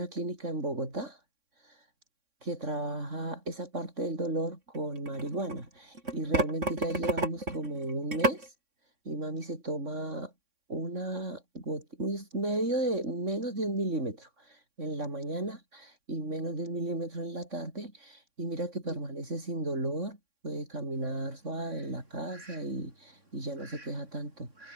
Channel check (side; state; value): left; late; 3.6 ms